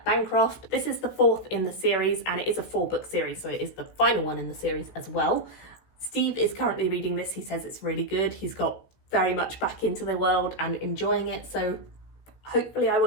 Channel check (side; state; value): right; late; 16 ms